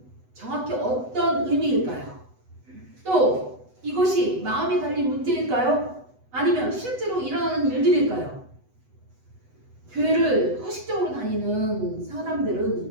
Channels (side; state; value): left; late; 8.0 ms